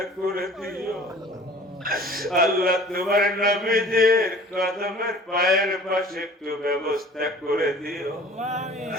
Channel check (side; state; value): both; normal; correlation 0.46